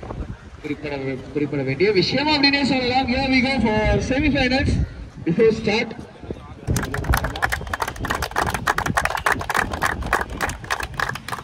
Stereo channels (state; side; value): identical; both; correlation 1.00